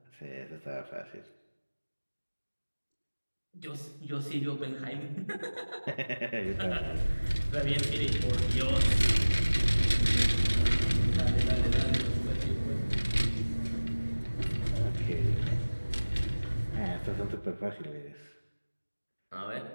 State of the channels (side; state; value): both; inverted; correlation -1.00